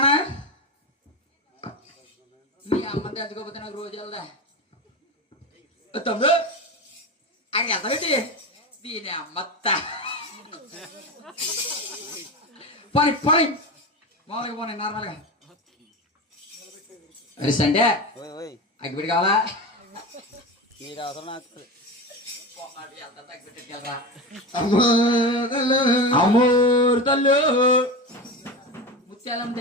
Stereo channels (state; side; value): normal; both; correlation 0.23